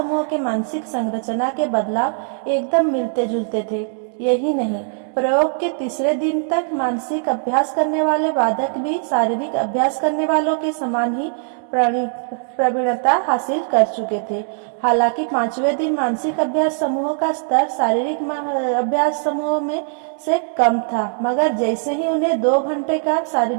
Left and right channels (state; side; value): silent; left; digital silence